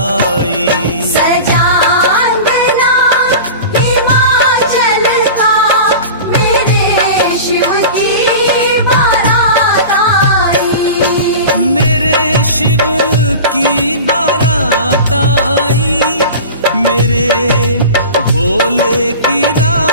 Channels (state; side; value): inverted; both; correlation -0.34